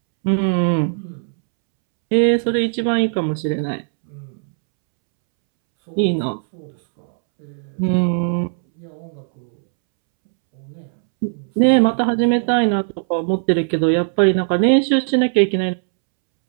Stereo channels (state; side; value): silent; left; 67 dB below the other